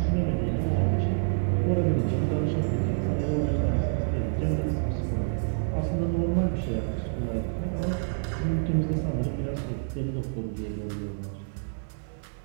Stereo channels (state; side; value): silent; left; 60 dB below the other